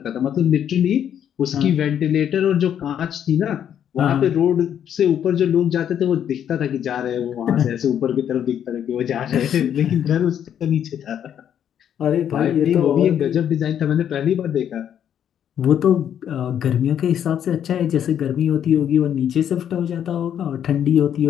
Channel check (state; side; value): quieter; right; 9.4 dB